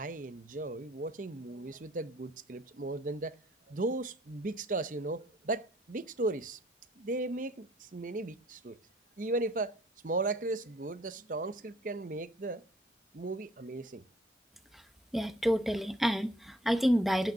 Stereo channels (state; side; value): normal; both; correlation 0.59